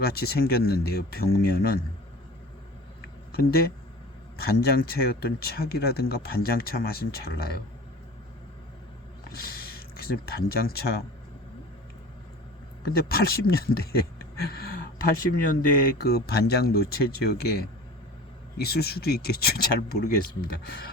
생겼는데요. 벽면은. 근데 반장차였던 차기라든가 반장차 맛은 잘 나요. 그래서 반장차 근데 80년대에 그 반장 노체 지역에 있을 수도 있겠죠. 잘 모르겠습니다.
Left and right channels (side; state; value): both; normal; correlation 0.39